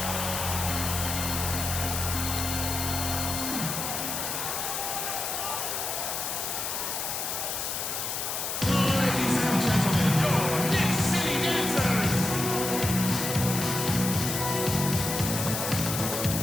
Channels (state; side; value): noise; left; hiss, 2 dB below the sound